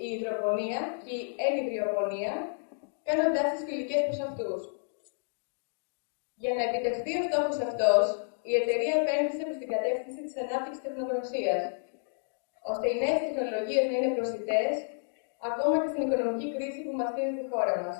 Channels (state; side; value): silent; right; digital silence